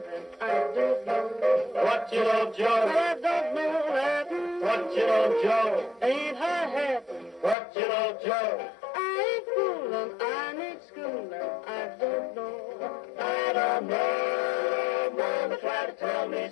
I don't know. What you know, Joe? I don't know Latin. What you know, Joe? Ain't high-hatting. What you know, Joe? I ain't fooling, I need schooling, I don't know. I don't know. Mama tried to tell me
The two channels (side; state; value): right; drops out; at 7.6 s